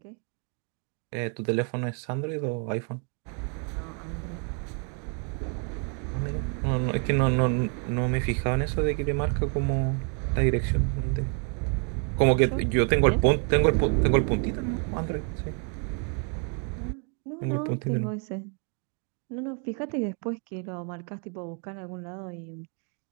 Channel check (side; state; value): left; quieter; 38.4 dB